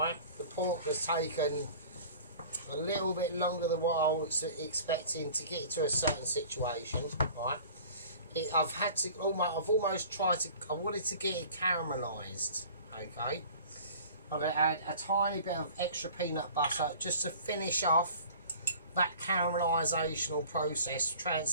the pork has taken a little bit longer than what I was expecting to get it to a certain situation. Right, I've almost tried to. I wanted to get it caramelised. Okay, I'm going to add a tiny bit of extra peanut butter just to finish off that caramelisation process,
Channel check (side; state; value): both; inverted; correlation -0.45